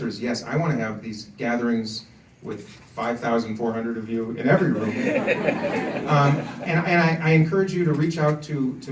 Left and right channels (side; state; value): both; identical; correlation 1.00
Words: is yes, I wanna have these gatherings with 5,400 of you in every room. And I encourage you to reach out to